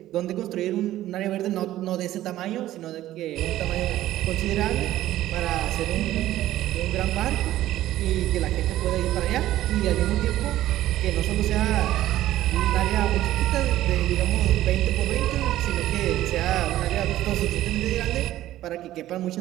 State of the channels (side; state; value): left; quieter; 14.2 dB